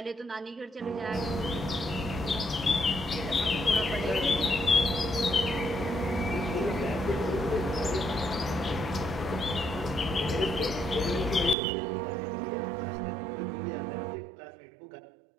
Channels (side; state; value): left; drops out; at 11.6 s